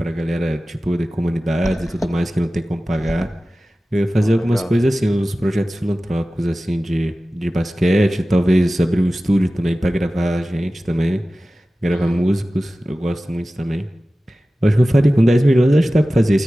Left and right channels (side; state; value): both; normal; correlation 0.96